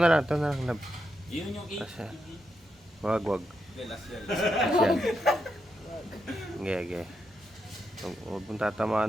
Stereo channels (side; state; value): both; normal; correlation 0.84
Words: na lang, love. Yun yung Asa? 8. Wag. Hindi, last yan. Yan. Okay. Huwag mong